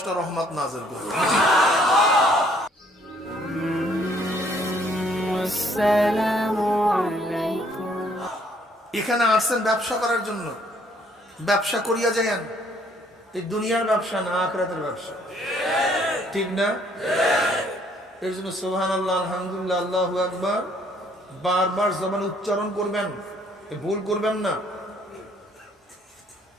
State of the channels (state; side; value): normal; both; correlation 0.64